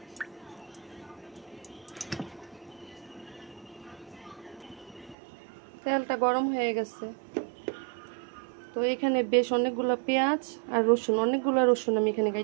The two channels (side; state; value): left; drops out; at 5.2 s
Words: তেলটা গরম হয়ে গেছে, তো এখানে বেশ অনেকগুলো পেঁয়াজ আর রসুন, অনেকগুলো রসুন আমি এখানে